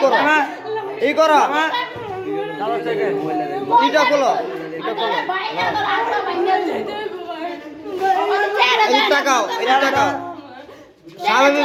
এই করো এটা খোলো এটা টাকাও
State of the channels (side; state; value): both; identical; correlation 1.00